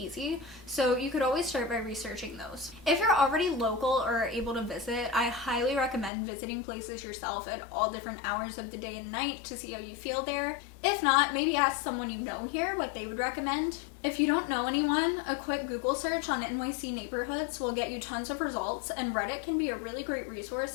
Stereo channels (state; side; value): drops out; right; at 6.1 s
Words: so you could always start by researching those. If you're already local or are able to visit, I highly recommend visiting places yourself at all different hours of the day and night to see how you feel there. If not, maybe ask someone you know here what they would recommend. If you don't know anyone, a quick Google search on NYC neighborhoods will get you tons of results, and Reddit can be a really great resource